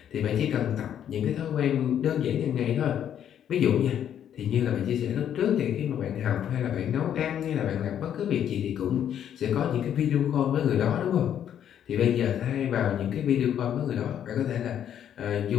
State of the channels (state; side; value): quieter; right; 9.7 dB